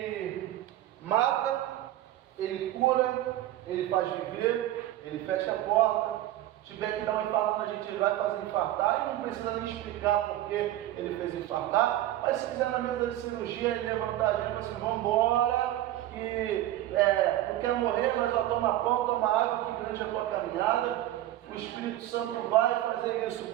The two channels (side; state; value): left; quieter; 14.0 dB